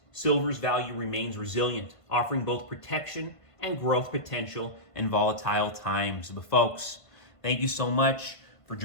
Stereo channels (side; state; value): right; late; 1.5 ms